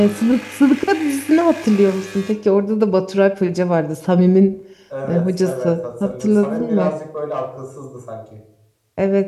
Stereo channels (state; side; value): identical; both; correlation 1.00